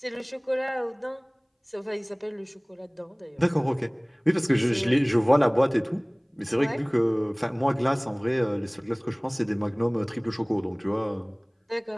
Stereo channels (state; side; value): identical; both; correlation 1.00